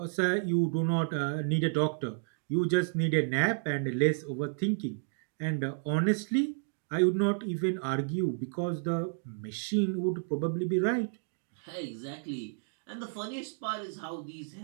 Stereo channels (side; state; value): left; silent; digital silence